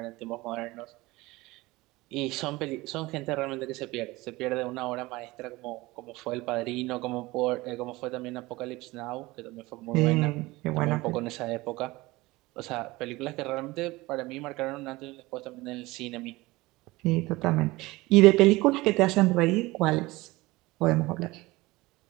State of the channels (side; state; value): left; quieter; 20.8 dB